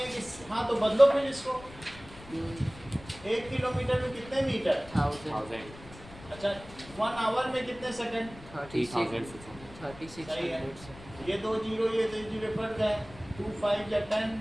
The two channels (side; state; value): left; noise; rumble, 18 dB below the sound